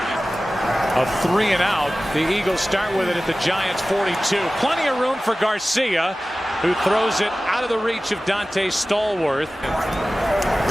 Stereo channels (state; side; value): normal; both; correlation 0.96